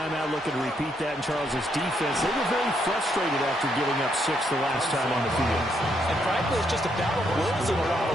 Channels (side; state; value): both; normal; correlation 0.75